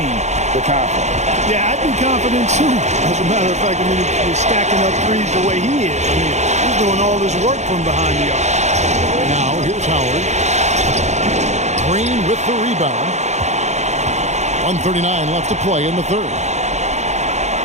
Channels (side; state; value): left; late; 0.33 ms